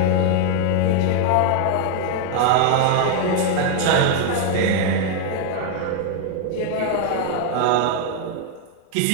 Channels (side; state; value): both; different; correlation 0.01